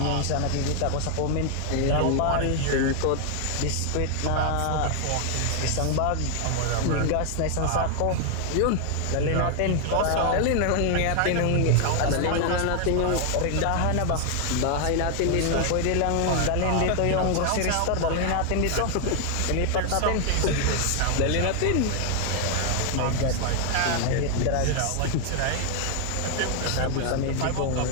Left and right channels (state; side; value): different; both; correlation 0.00